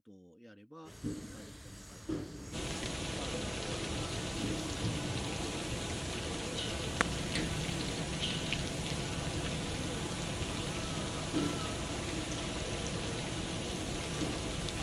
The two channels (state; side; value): identical; both; correlation 1.00